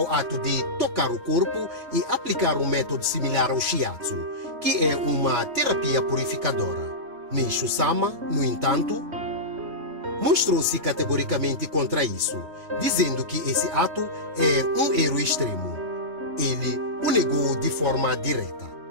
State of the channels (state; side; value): late; left; 3.3 ms